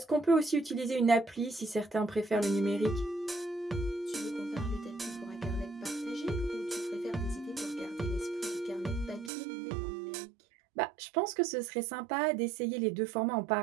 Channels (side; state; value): left; drops out; at 9.3 s